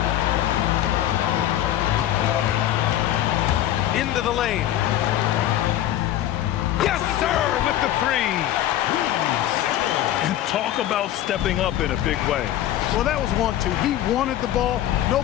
Into the lane. Yes, sir, with the 3. And talk about stepping up in a big way. Well, that was 1-2. He wanted the ball.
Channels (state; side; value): quieter; right; 12.6 dB